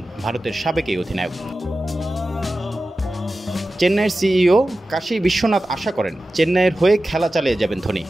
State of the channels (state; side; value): normal; both; correlation 0.94